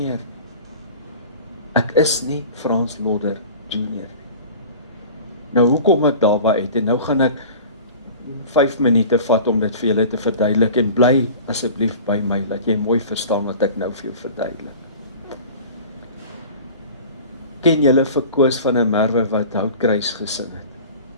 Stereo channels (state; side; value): inverted; both; correlation -0.40